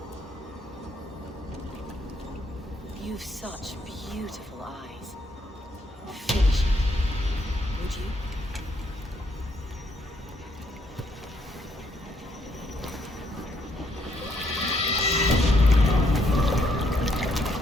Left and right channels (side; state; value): both; normal; correlation 0.72